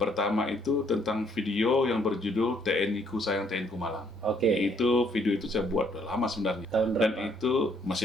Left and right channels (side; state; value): left; noise; hum, 30 dB below the sound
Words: itu tentang video yang berjudul TNI Ku Sayang TNI Ku Malang. Oke. Itu video itu saya buat udah lama sebenarnya. Tahun berapa? Dan itu